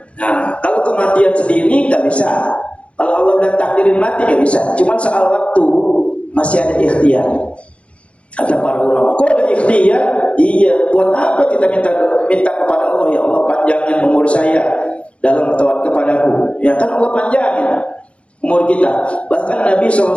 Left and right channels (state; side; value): late; right; 0.061 ms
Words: Nah, kalau kematian sendiri nggak bisa. Kalau Allah udah takdirin mati nggak bisa. Cuman soal waktu masih ada ikhtiar. Kata para ulama, kok ada ikhtiar? Iya, buat apa kita minta kepada Allah, ya Allah panjangin umur saya dalam taat kepadaku. Ya kan Allah panjangin umur kita. Bahkan Nabi SAW